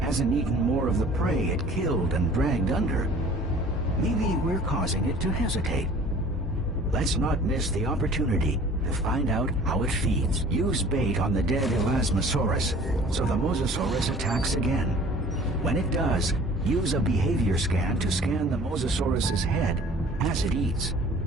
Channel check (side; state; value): both; normal; correlation 0.48